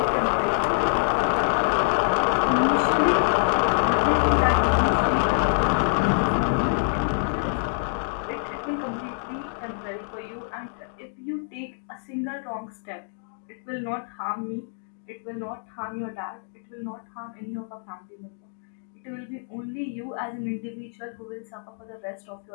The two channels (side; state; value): right; silent; digital silence